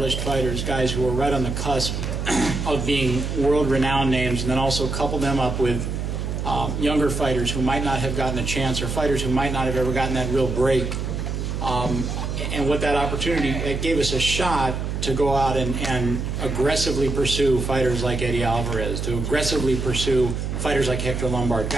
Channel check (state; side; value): noise; right; hum, 3 dB below the sound